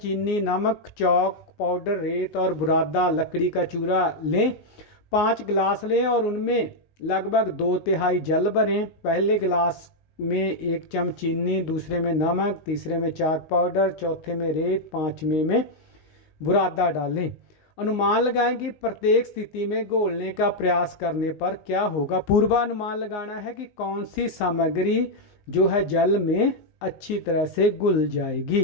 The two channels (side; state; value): right; late; 19 ms